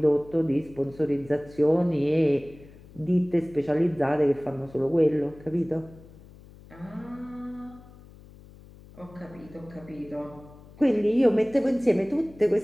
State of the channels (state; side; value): noise; left; hum, 21 dB below the sound